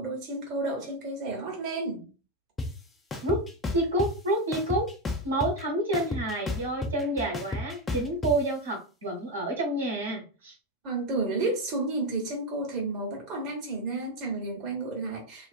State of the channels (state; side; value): normal; both; correlation 0.09